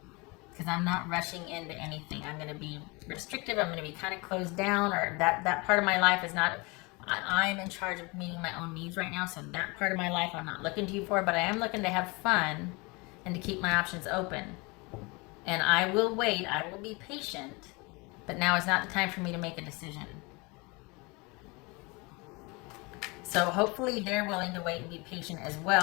because I'm not rushing into anything. I'm going to be restrictive. I'm going to be kind of closed down, or that part of my life is not. I'm in charge of meeting my own needs right now, so that part of my life I'm not looking to you for, but I am looking to have fun and to keep my options open. And I will wait. I will be patient. But now is not the time for me to make a decision. So hopefully they're willing to wait and be patient as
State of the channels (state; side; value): quieter; right; 27.1 dB